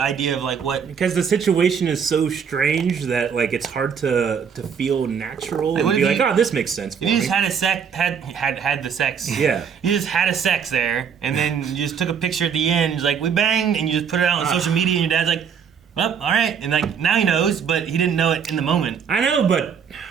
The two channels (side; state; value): left; quieter; 7.1 dB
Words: of, like, what... Because the situation is so strange that, like, it's hard to feel natural Like, and be like, oh, this makes sense for you me. just had the sex. Yeah. You just had a sex there, and then you just took a picture at the end, it's like, we banged, and you just put it out on social media, and your dad's like, well, all right. And, like, now he knows, but he didn't know it in the moment. I know, but...